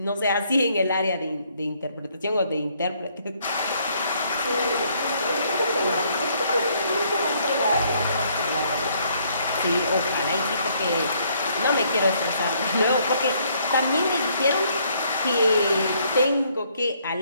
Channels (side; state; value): both; inverted; correlation -0.68